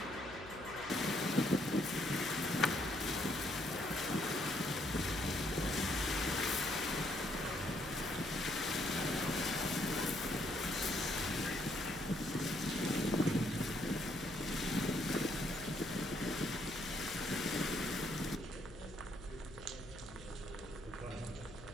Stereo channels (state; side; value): noise; left; hum, 16 dB below the sound